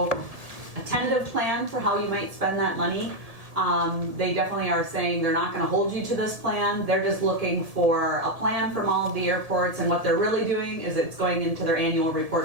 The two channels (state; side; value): late; left; 1.7 ms